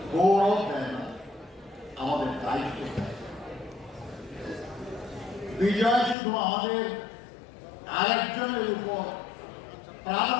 গৌরব দেয় না, আমাদের দায়িত্ব দেয়। বিজয় শুধু আমাদের আরেকজনের উপর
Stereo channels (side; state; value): right; drops out; at 6.2 s